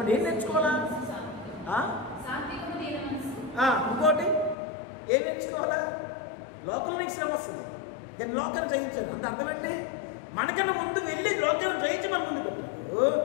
ఏం నేర్చుకోవాలా? ఇంకోటి ఏం నేర్చుకోవాలా? లోకంలో నీకు శ్రమ వస్తుంది, నేను లోకాన్ని జయించాను అంటే అర్థం ఏంటి? మనకన్నా ముందు వెళ్ళి లోకాన్ని జయించి మన ముందు పెట్టాడు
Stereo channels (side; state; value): right; drops out; at 4.5 s